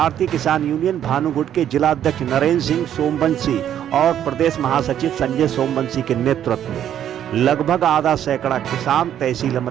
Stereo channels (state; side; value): quieter; left; 10.3 dB